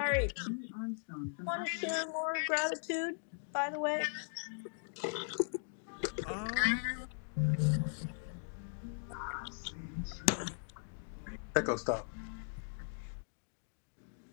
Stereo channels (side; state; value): right; silent; digital silence